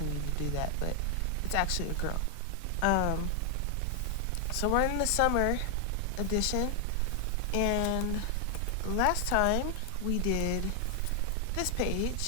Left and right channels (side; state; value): both; different; correlation 0.00